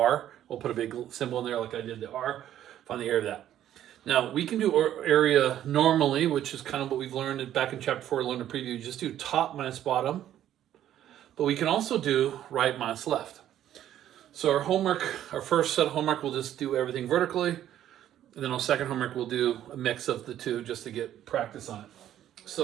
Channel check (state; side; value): quieter; left; 11.6 dB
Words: We'll put a big symbol in there like I did the R. Find the area of that. Now, we can do area normally, which is kind of what we've learned back in chapter 4, learned a preview. Just do top minus bottom. But we can also do right minus left. So our first set of homework, we'll just do everything vertically. And then our second homework, we'll do a mix of the two just to get practice on it.